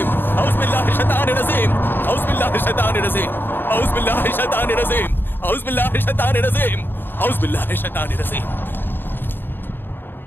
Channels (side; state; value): right; late; 0.098 ms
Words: আউযুবিল্লাহি মিনাশ শাইতানির রাজিম। আউযুবিল্লাহি মিনাশ শাইতানির রাজিম। আউযুবিল্লাহি মিনাশ শাইতানির রাজিম। আউযুবিল্লাহি মিনাশ শাইতানির রাজিম। আউযুবিল্লাহি মিনাশ শাইতানির রাজিম।